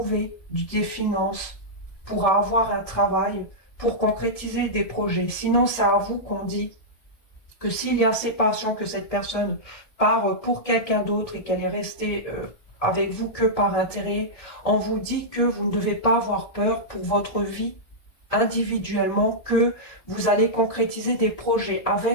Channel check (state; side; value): late; right; 1.7 ms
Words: des finances, pourra avoir un travail pour concrétiser des projets. Sinon, c'est à vous qu'on dit que s'il y a séparation, que cette personne part pour quelqu'un d'autre et qu'elle est restée avec vous que par intérêt, on vous dit que vous ne devez pas avoir peur pour votre vie individuellement, que vous allez concrétiser des projets